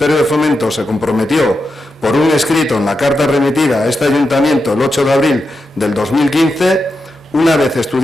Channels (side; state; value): both; normal; correlation 0.88